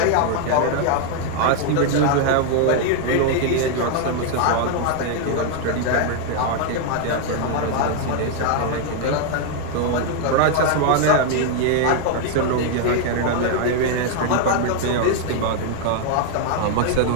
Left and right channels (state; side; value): different; both; correlation 0.00